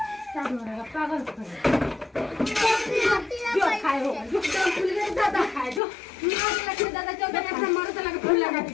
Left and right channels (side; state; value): right; drops out; at 5.8 s